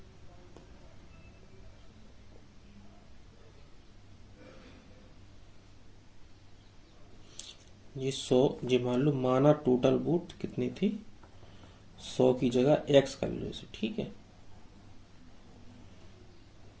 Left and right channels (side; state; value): both; identical; correlation 1.00